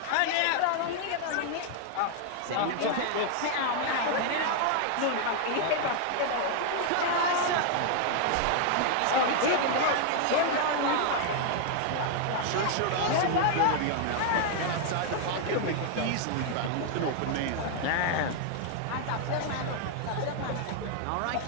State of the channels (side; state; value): both; different; correlation 0.00